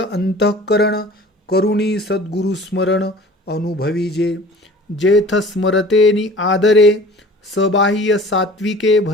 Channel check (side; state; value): both; normal; correlation 0.45